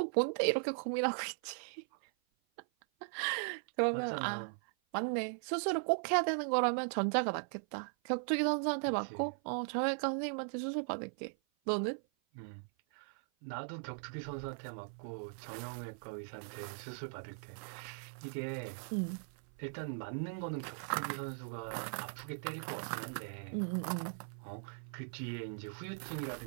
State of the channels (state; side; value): silent; left; 52 dB below the other